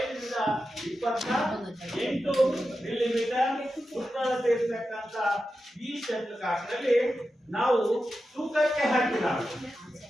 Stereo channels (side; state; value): both; normal; correlation 0.91